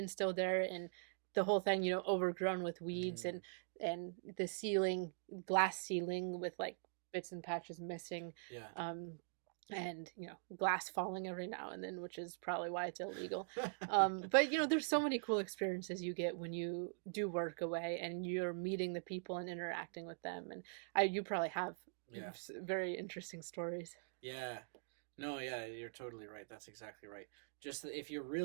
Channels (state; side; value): silent; left; digital silence